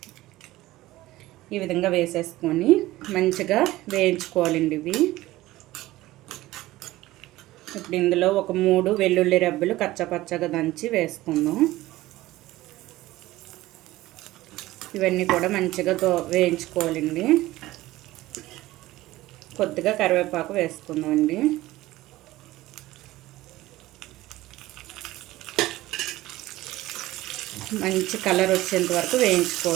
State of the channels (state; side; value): quieter; left; 17.2 dB